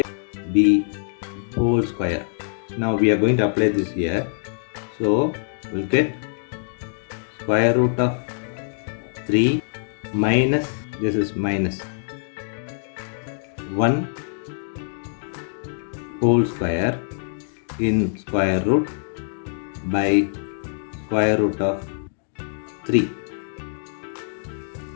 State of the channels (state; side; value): silent; right; digital silence